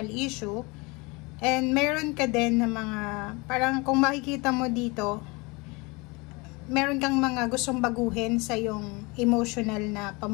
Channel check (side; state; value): right; quieter; 26.7 dB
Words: issue, and meron ka din na mga, parang kung makikita mo dito, meron kang mga gustong baguhin sa iyong emotional na